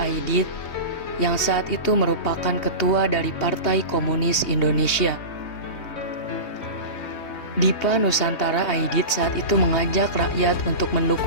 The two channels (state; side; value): late; right; 3.2 ms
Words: yang saat itu merupakan ketua dari Partai Komunis Indonesia. Dipa Nusantara Aidit saat itu mengajak rakyat untuk